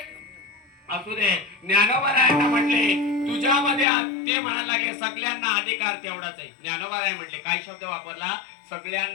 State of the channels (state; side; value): drops out; right; at 3.9 s